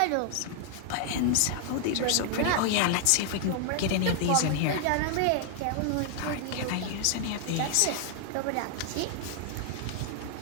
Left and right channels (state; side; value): different; both; correlation 0.00